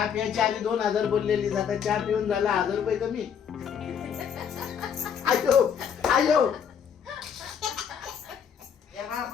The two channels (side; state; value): right; quieter; 7.6 dB